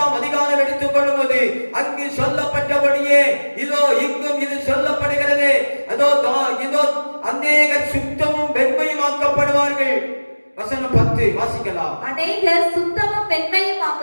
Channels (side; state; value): both; inverted; correlation -1.00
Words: அதிகாரம் எடுத்துக் கொள்ளும்போது அங்கு சொல்லப்பட்டபடியே இதோ இங்கும் இது சொல்லப்படுகிறது. அதோ இதோ அநேகர் சுத்தமும் வெண்மையும் ஆக்கப்படுவார்கள். வசனம் 10 வாசிக்கலாம். அநேகர் சுத்தமும் வெண்மையும்